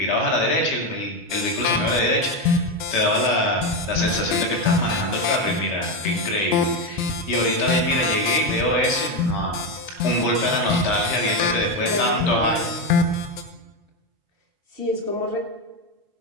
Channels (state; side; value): late; left; 5.1 ms